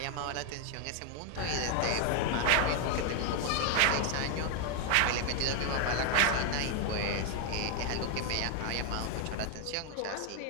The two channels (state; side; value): different; both; correlation 0.01